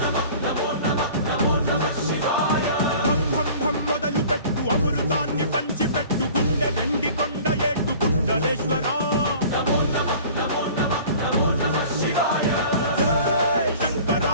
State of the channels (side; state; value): both; inverted; correlation -0.45